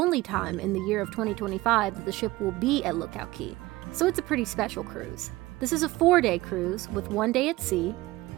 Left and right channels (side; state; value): left; quieter; 19.0 dB